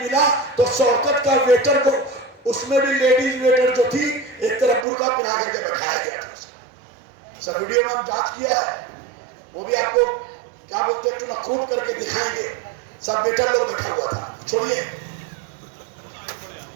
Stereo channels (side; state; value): left; drops out; at 4.9 s